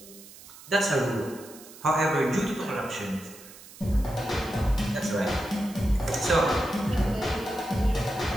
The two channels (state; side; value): noise; right; hiss, 19 dB below the sound